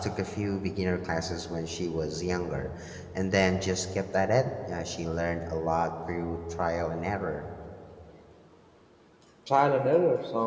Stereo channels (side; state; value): both; identical; correlation 1.00